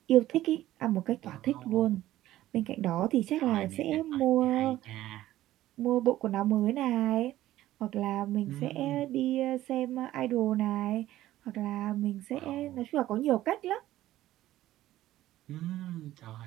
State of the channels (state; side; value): quieter; left; 14.6 dB